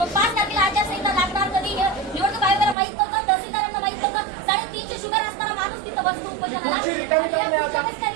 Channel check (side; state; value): left; drops out; at 2.8 s